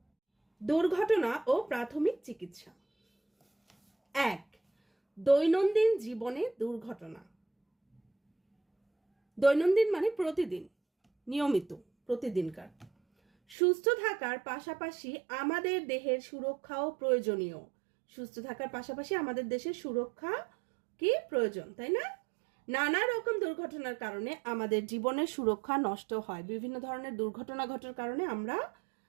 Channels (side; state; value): left; drops out; at 13.6 s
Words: দুর্ঘটনা ও প্রাথমিক চিকিৎসা। ১. দৈনন্দিন জীবনে দুর্ঘটনা। দৈনন্দিন মানে প্রতিদিন, নিয়মিত, প্রতিদিনকার। সুস্থ থাকার পাশাপাশি আমাদের দেহের সুরক্ষাও প্রয়োজনীয়। সুস্থ থাকার পাশাপাশি আমাদের দেশের সুরক্ষা কি প্রয়োজন, তাই না? নানা রকম দুর্ঘটনার কারণে আমাদের জীবনের সুরক্ষা নষ্ট হয়। বিভিন্ন ধরনের দুর্ঘটনা ঘটার কারণে